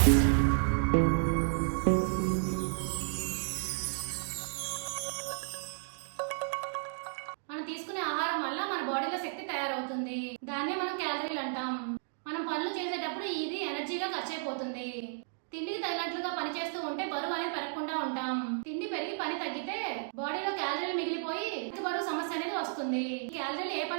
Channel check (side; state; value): left; silent; digital silence